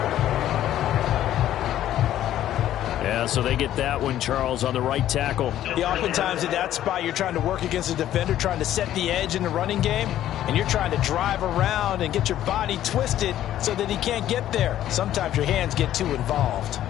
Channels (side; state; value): right; quieter; 12.3 dB